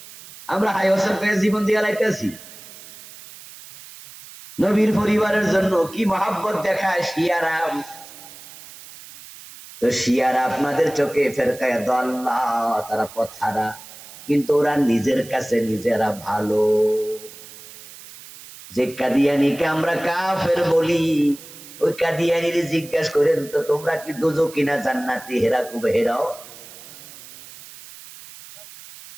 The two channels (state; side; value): noise; right; hiss, 17 dB below the sound